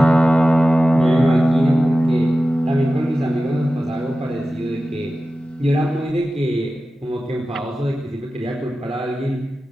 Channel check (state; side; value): normal; both; correlation 0.94